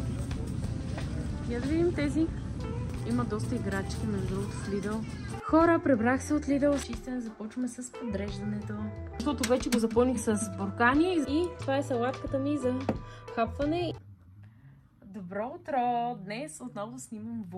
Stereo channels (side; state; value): both; identical; correlation 1.00